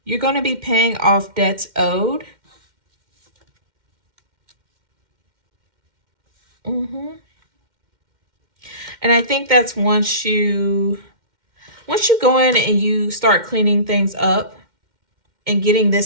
You're going to be paying off debts owed. And I think that's once you go in and you start cleaning things up and getting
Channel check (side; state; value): left; late; 2.1 ms